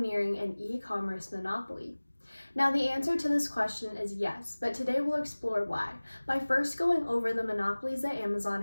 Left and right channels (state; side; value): inverted; both; correlation -1.00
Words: an e-commerce monopoly? Now the answer to this question is yes, but today we'll explore why, by first going over the monopolies that